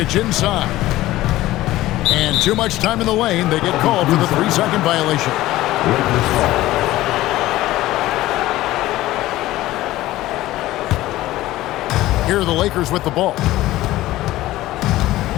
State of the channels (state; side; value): quieter; right; 16.3 dB